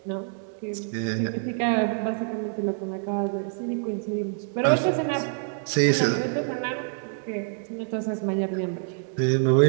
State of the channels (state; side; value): silent; left; digital silence